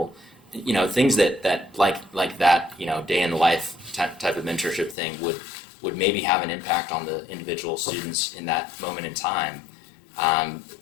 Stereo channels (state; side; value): drops out; right; at 5.0 s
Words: things that like that, day in the life type of mentorship thing would maybe have an impact on the individual students in that moment in time.